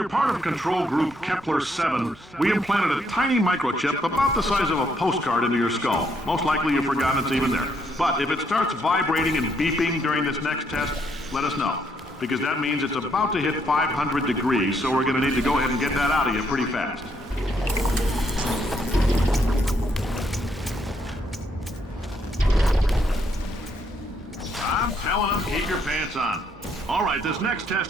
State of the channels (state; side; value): normal; both; correlation 0.73